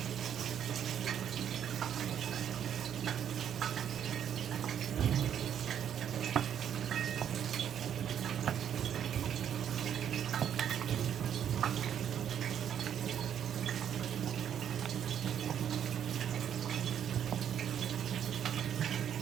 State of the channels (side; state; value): left; quieter; 9.2 dB